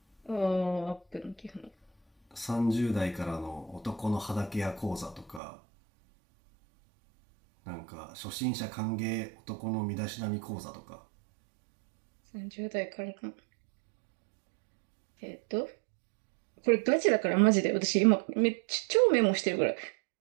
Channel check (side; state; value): left; drops out; at 5.4 s